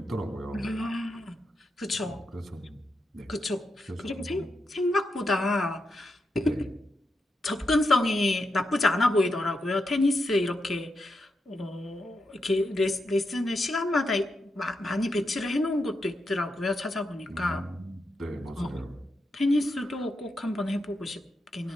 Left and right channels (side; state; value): both; normal; correlation 0.85